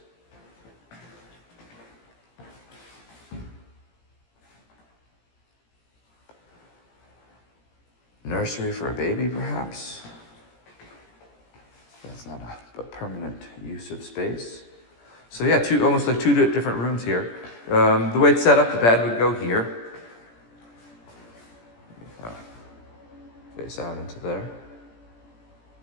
Nursery for a baby, perhaps? That's not a permanent use of space. So yeah, almost like two different rooms here. The way it's set up, the bed would go here. Face out into there.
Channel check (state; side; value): late; right; 17 ms